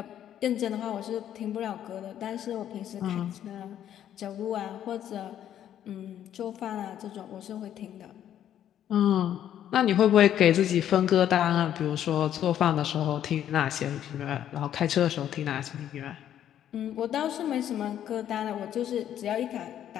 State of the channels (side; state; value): right; quieter; 10.6 dB